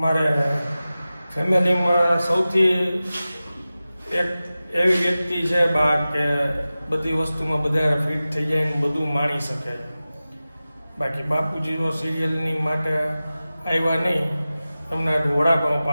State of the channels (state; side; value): inverted; both; correlation -0.96